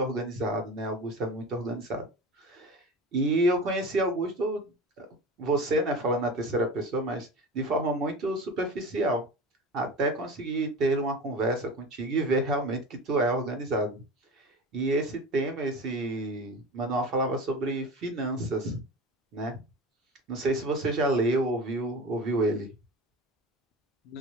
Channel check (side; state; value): both; normal; correlation 0.33